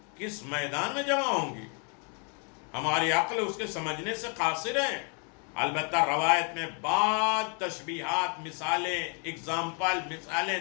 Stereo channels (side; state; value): right; quieter; 38.3 dB